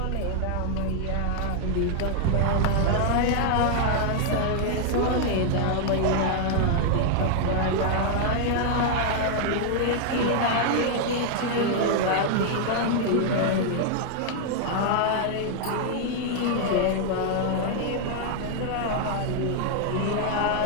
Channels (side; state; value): both; different; correlation 0.00